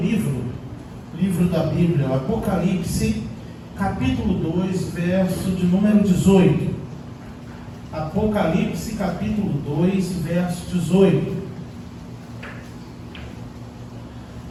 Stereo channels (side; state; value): both; identical; correlation 1.00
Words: da Bíblia, o Apocalipse, capítulo 2, verso de número 18. Apocalipse, capítulo 2, verso 18.